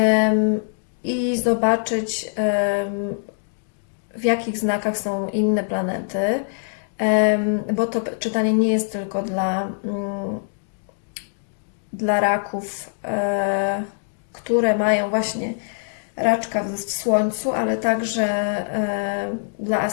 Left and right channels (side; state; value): right; silent; digital silence